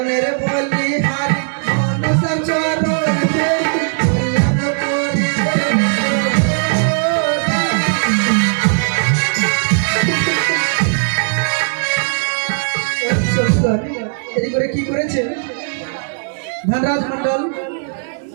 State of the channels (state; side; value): silent; left; 68 dB below the other